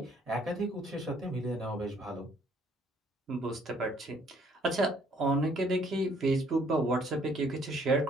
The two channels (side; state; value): both; normal; correlation 0.63